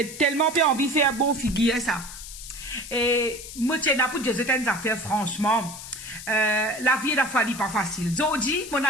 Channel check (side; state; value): left; noise; hiss, 12 dB below the sound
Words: tellement peu envie de faire bon figure, ça. Et moi, tiens, pour dire certaines affaires, franchement, la vie, la fois, pas facile. Zodi, mon